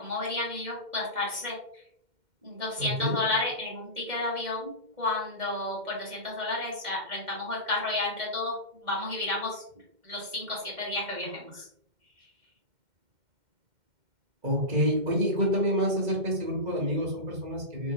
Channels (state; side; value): late; left; 2.1 ms